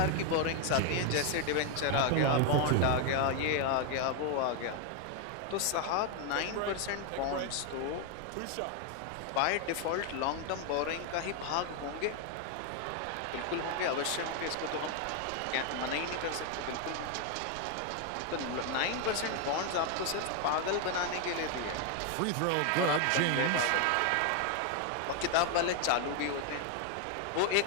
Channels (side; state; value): both; different; correlation 0.01